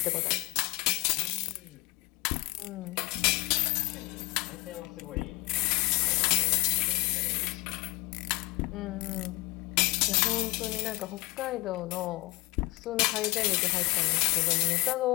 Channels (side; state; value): right; quieter; 23.0 dB